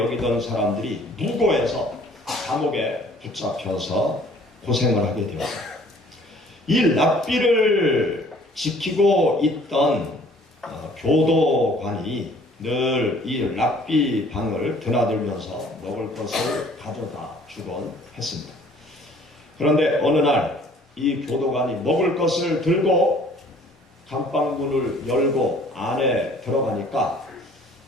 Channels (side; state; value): both; normal; correlation 0.55